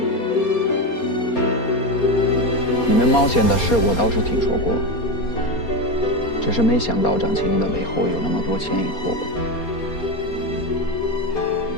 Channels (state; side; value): late; right; 4.3 ms